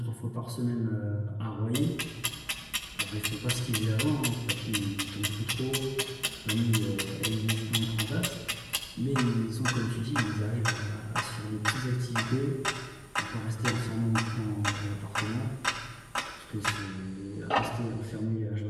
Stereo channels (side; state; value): both; identical; correlation 1.00